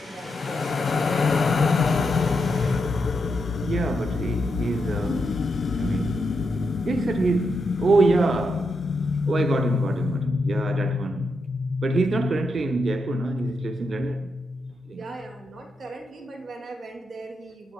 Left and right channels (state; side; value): normal; both; correlation 0.83